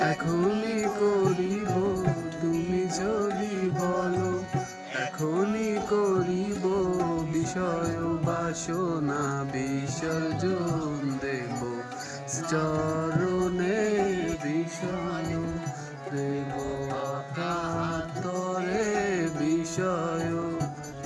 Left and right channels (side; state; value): both; identical; correlation 1.00